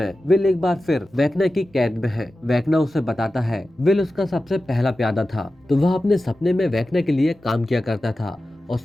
विल एक बार फिर वेकना की कैद में है। वेकना उसे बताता है विल उसका सबसे पहला प्यादा था, तो वह अपने सपने में वेकना के लिए काम किया करता था और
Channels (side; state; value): both; normal; correlation 0.94